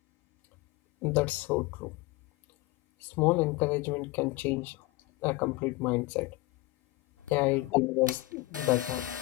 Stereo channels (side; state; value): right; quieter; 19.8 dB